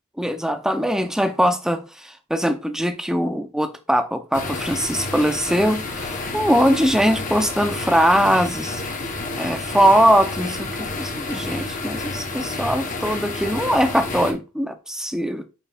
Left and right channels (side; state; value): both; normal; correlation 0.83